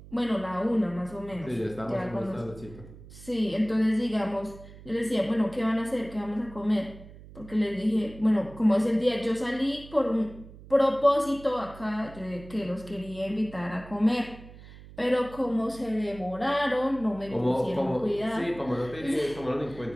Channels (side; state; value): right; noise; hum, 18 dB below the sound